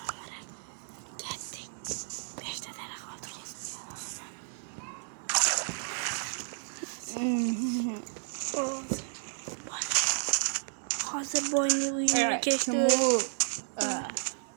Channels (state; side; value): silent; left; digital silence